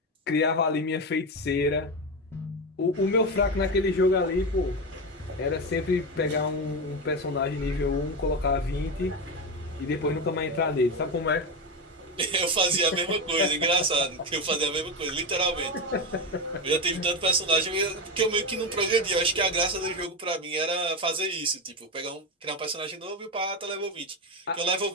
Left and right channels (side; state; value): both; normal; correlation 0.15